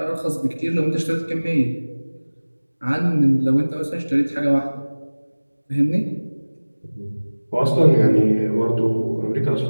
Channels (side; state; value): both; inverted; correlation -1.00